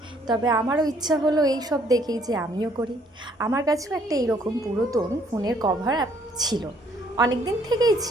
তবে আমারও ইচ্ছা হলো এই সব দেখেই যে আমিও করি। আমার কাছেও একটা এইরকম পুরাতন ফোনের কভার ছিল, অনেক দিন থেকেই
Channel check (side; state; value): both; normal; correlation 0.64